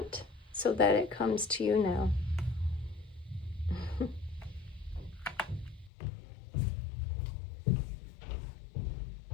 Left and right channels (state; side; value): drops out; right; at 5.9 s